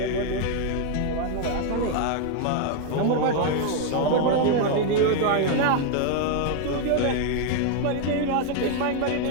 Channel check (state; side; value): different; both; correlation 0.00